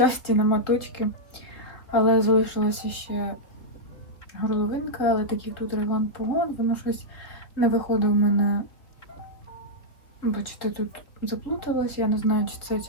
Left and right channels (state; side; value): late; right; 3.7 ms